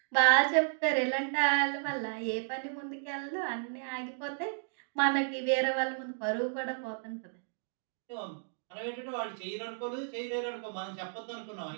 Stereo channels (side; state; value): left; silent; digital silence